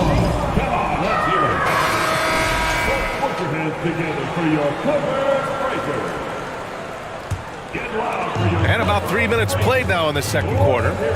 Come on, let's hear it. Put your hands together for your Clippers Breakers. Get loud for your... And about 3 minutes played now in the second quarter.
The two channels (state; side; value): identical; both; correlation 1.00